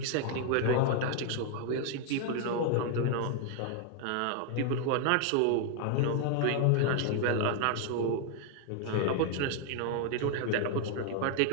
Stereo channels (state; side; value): different; both; correlation 0.00